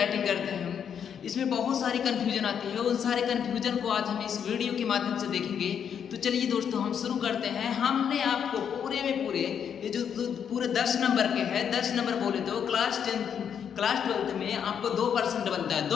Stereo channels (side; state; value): right; quieter; 8.0 dB